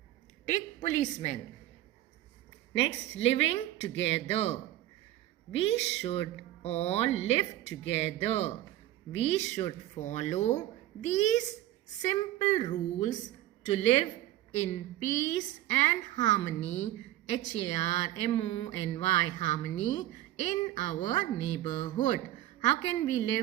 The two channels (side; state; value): left; quieter; 14.4 dB